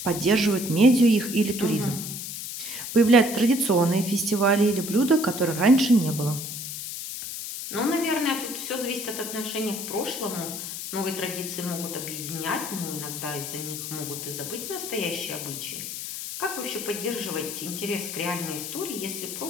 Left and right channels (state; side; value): noise; left; hiss, 7 dB below the sound